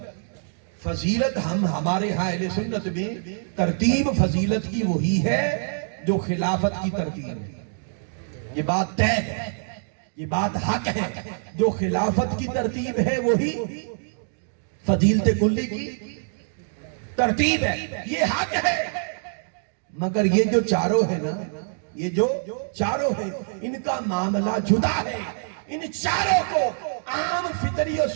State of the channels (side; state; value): left; silent; digital silence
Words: فضیلت ہمارے ہاں اہل سنت میں ترتیب فضیلت کی وہی ہے جو خلافت کی ترتیب ہے۔ یہ بات طے ہے، یہ بات حق ہے، جو خلافت کی ترتیب ہے وہی فضیلت کلی کی ترتیب ہے، یہ حق ہے۔ مگر یہ جو چاروں ہیں نا، یہ جو چاروں ہیں، ان کا معاملہ جدا ہے۔ ان چاروں کو عام فطری